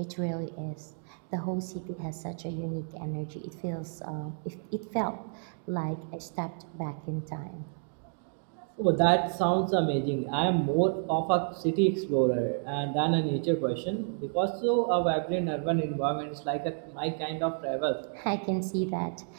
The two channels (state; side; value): silent; left; 57 dB below the other